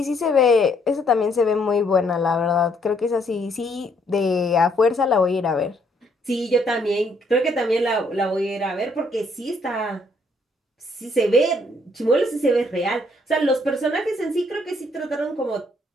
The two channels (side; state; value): both; normal; correlation 0.68